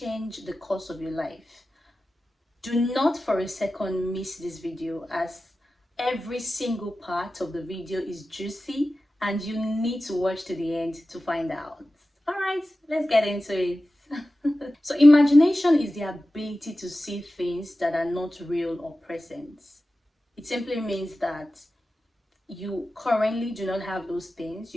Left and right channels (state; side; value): normal; both; correlation 0.94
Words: the course of your life. Do not for a second miss this video, as every single part of the video is juicy and you need to watch to the end to find out. All right, let's get into it. So imagination is the ability to see things that are not real or present. It simply means that you currently do not have those things.